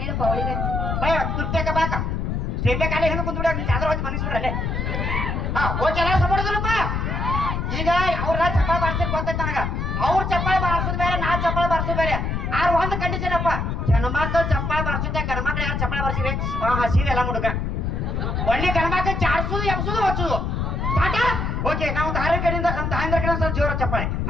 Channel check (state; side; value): noise; left; rumble, 1 dB below the sound